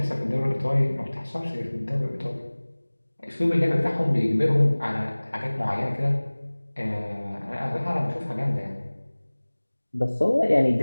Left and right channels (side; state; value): both; inverted; correlation -1.00